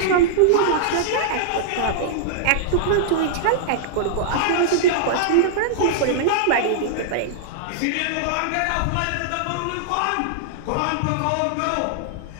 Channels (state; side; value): different; both; correlation -0.02